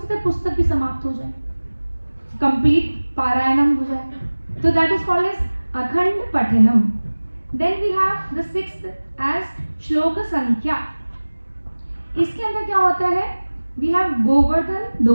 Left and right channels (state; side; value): inverted; both; correlation -1.00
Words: है पुस्तक भी समाप्त हो जाए, कंप्लीट पारायणम हो जाए। तो that is called as akhand pathanam. Then we have the sixth as shlok sankhya. इसके अंदर क्या होता है, वी हैव गोवर्धन